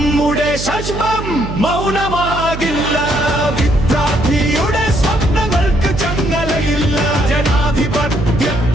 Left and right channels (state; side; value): noise; right; hum, 7 dB below the sound